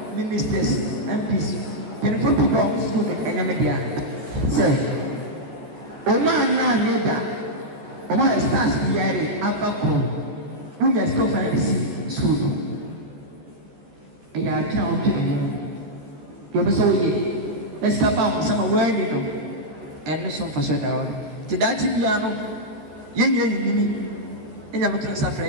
ministers MPs mpanyinfo pii ba hɔ school ɛnyɛmɛ bia sɛ ɔmo anaa nyɛ da ɔmo ayɛ stars biara afa koro wonyɛ school fa ɛsi school no ɛyɛ atwene ɔtwe ɛyɛ deɛ ɔbɛ sɛ ɔyɛ ɛsika ba ɔmo sɛ ma wɔn ani no ɛno so mfa so da hɔ te daakye biara no yɛnyɛ nyini ɛnya mo tena safrɛ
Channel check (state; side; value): late; left; 14 ms